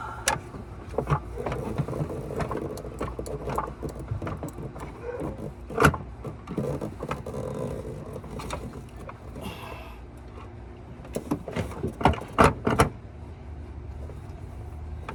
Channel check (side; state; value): both; identical; correlation 1.00